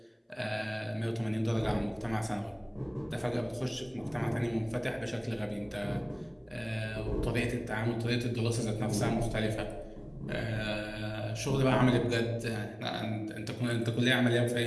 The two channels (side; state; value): both; identical; correlation 1.00